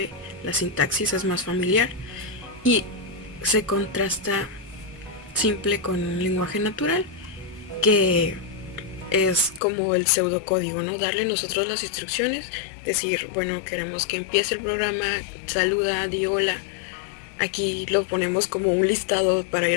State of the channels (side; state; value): right; drops out; at 9.6 s